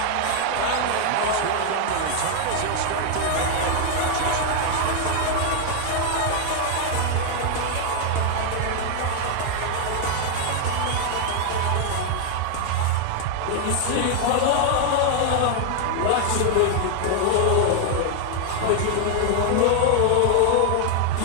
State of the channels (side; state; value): both; different; correlation 0.00